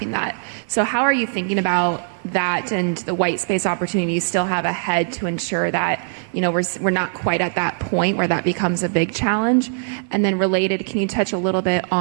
that. So how are you thinking about that and the white space opportunity you still have ahead to ensure that, we're not quite at that point where that becomes a big challenge? And then related, can you touch a little bit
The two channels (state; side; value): silent; left; digital silence